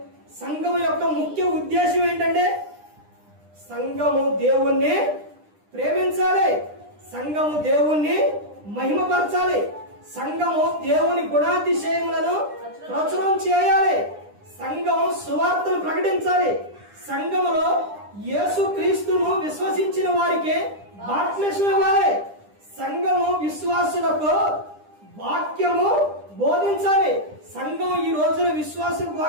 సంఘం యొక్క ముఖ్య ఉద్దేశం ఏంటంటే సంఘము దేవుణ్ణి ప్రేమించాలి, సంఘము దేవుణ్ణి మహిమపరచాలి, సంఘము దేవుని గుణాతిశయములను ప్రచురం చేయాలి, సంఘం సువార్తను ప్రకటించాలి, సంఘములో యేసు క్రీస్తును విశ్వసించిన వారికి బాప్తిస్మం ఇవ్వాలి, సంఘము విశ్వాసులకు వాక్యము బోధించాలి. సంఘం ఈ రోజున విశ్వాసులకు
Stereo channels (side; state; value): left; late; 9.9 ms